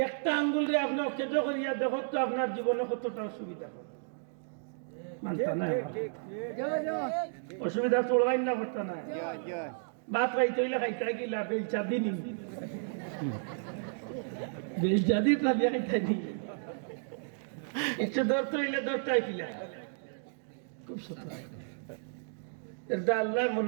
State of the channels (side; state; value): left; silent; digital silence